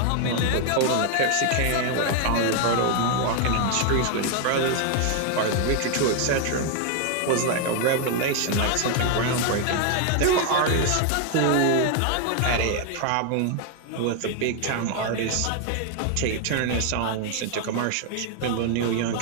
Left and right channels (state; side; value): different; both; correlation 0.00